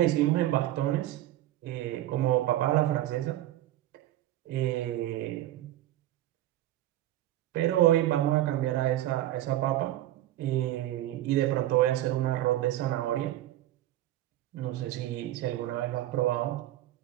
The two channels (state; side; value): quieter; left; 14.3 dB